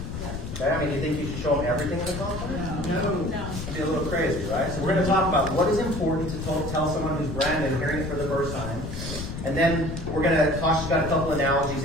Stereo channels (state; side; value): noise; left; rumble, 7 dB below the sound